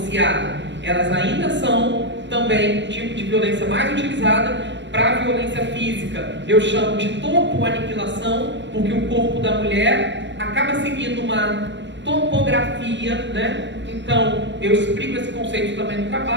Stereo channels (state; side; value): late; left; 0.53 ms